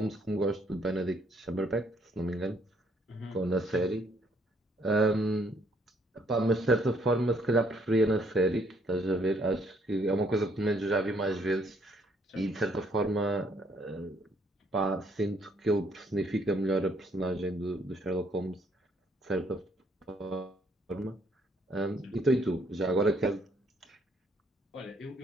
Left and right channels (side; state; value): both; normal; correlation 0.67